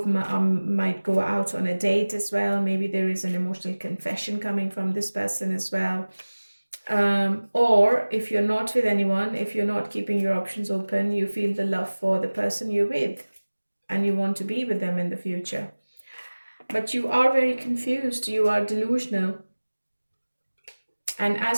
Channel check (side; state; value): both; inverted; correlation -1.00